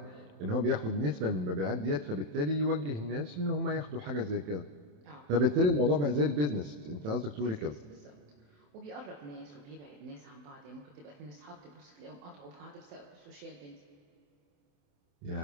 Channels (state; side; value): late; left; 28 ms